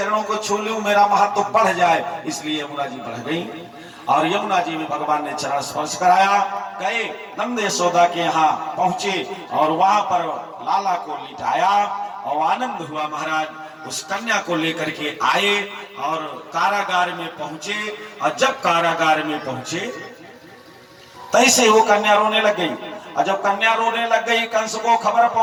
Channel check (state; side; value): identical; both; correlation 1.00